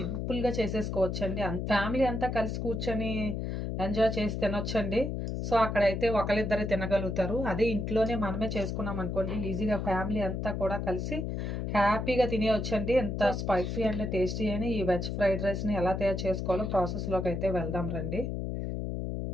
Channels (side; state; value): left; noise; hum, 3 dB below the sound